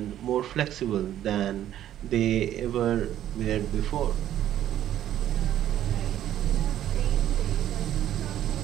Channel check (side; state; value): left; quieter; 11.8 dB